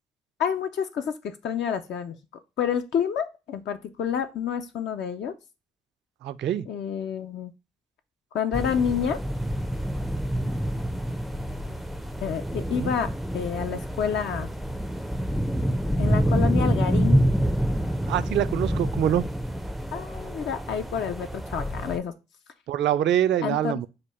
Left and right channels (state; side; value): normal; both; correlation 0.64